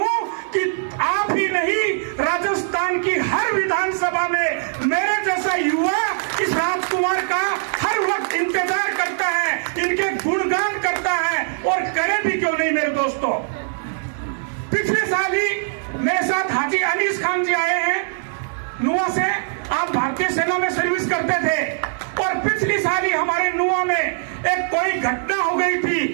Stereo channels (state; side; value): silent; left; digital silence